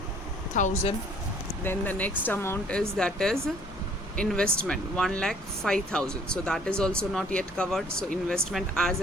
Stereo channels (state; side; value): normal; both; correlation 0.57